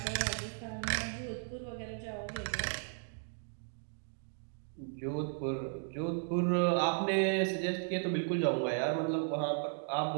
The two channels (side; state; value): left; silent; 54 dB below the other